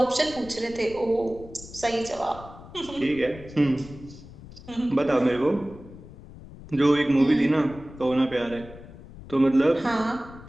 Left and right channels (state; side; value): noise; left; rumble, 17 dB below the sound